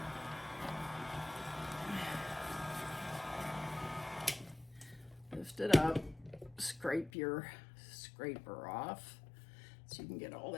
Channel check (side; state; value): right; drops out; at 7.1 s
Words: Lift it up, scrape your scraper off so you can get all